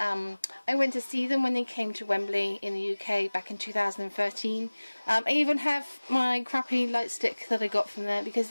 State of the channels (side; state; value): both; inverted; correlation -1.00